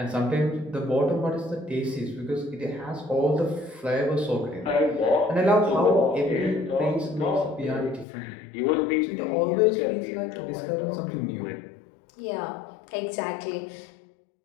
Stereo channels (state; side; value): drops out; right; at 8.1 s